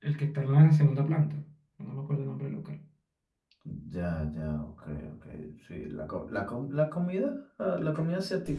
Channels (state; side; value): identical; both; correlation 1.00